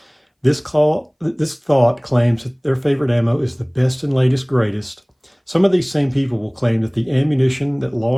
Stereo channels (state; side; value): identical; both; correlation 1.00